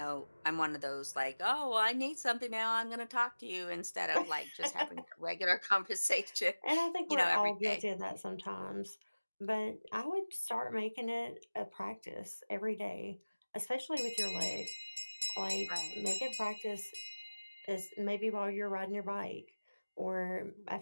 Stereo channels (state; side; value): inverted; both; correlation -1.00